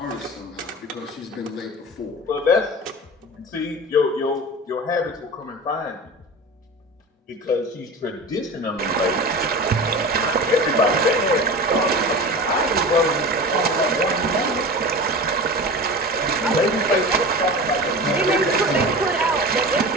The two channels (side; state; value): both; normal; correlation 0.32